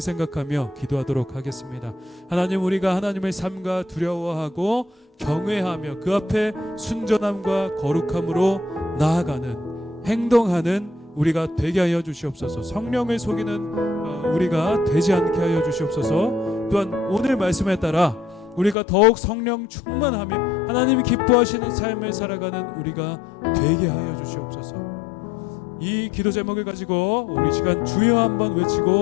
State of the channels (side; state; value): right; drops out; at 18.8 s